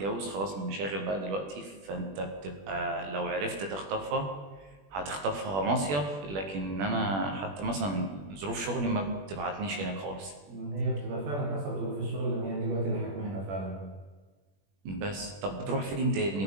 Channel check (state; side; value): late; left; 21 ms